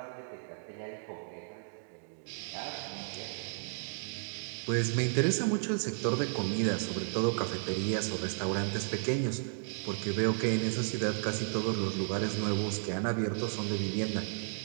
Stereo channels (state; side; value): silent; left; digital silence